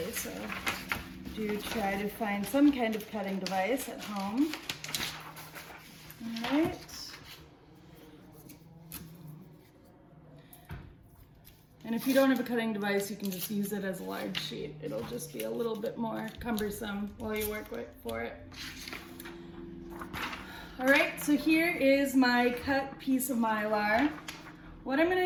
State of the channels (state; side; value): identical; both; correlation 1.00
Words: so do try to find some kind of cutting device at home. All right. And if you don't have a cutting device, you can just use it as a large sheet. It'll just be a little bit more cumbersome while you work for it. All right, so here is my cut piece of Mylar. What I'm